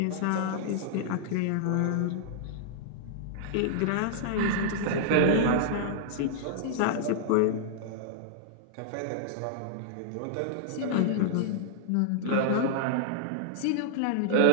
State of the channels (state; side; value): different; both; correlation -0.01